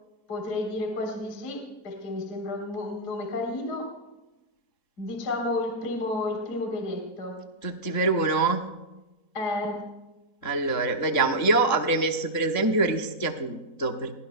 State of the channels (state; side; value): late; right; 3.7 ms